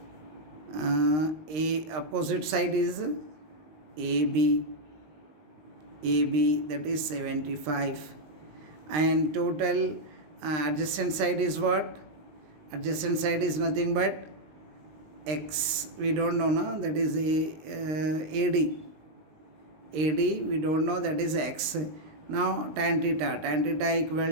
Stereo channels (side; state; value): left; late; 20 ms